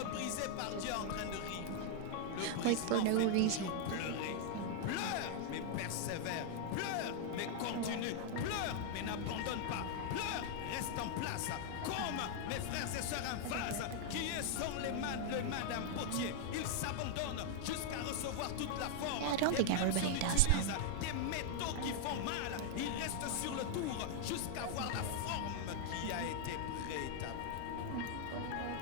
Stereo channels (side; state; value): both; different; correlation 0.00